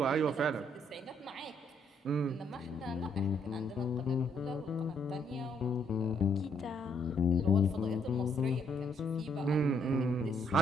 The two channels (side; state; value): both; normal; correlation 0.71